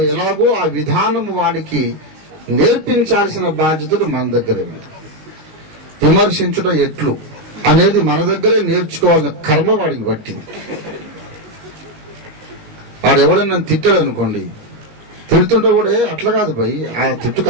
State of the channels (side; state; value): left; late; 19 ms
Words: ఎలాగో ఆ విధానం వాడికి నేర్పించాల్సిన బాధ్యతలు మన దగ్గరే ఉంది. విమర్శించడం ఎట్లు అనేది మన దగ్గరే నేర్చుకోవాల్సిన కర్మ వాడికి పట్టింది. వాడు ఎవడన్నా తిట్టాడు అనుకోండి, తిడుతుంటే కూడా అట్లా కాదు భయ్, ఆ తిట్టుకు